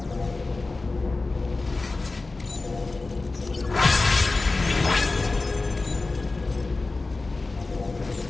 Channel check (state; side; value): quieter; right; 3.5 dB